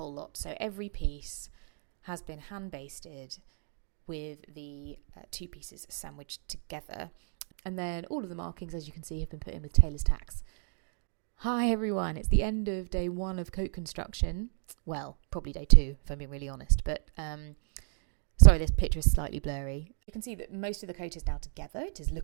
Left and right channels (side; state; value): left; silent; 56 dB below the other